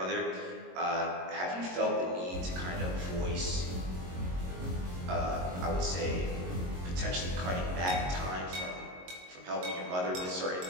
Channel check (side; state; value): left; late; 22 ms